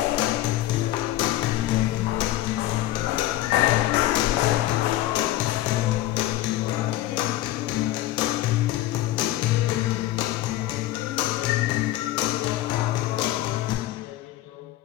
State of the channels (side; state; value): right; quieter; 15.2 dB